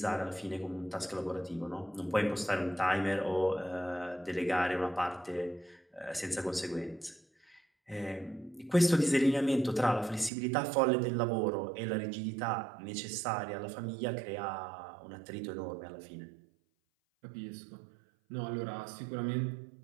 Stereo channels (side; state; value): left; drops out; at 10.3 s